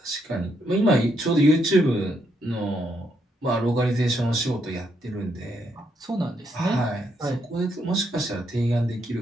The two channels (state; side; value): normal; both; correlation 0.76